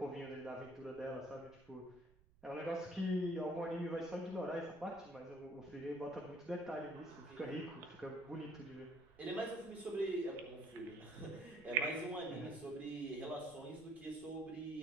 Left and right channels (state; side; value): noise; right; rumble, 26 dB below the sound